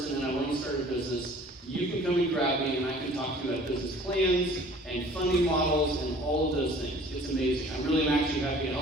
and I want to start a business, you can come and grab me and I can talk to you about business plans and funding models and all of those things. It's amazing. I'm actually happy to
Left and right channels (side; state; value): both; normal; correlation 0.50